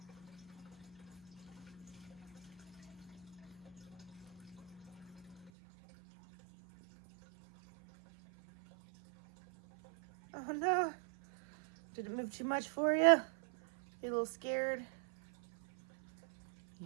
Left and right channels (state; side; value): drops out; left; at 5.5 s